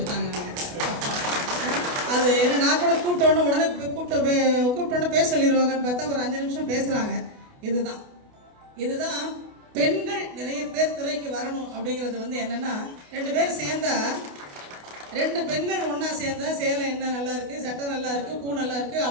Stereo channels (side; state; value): left; late; 28 ms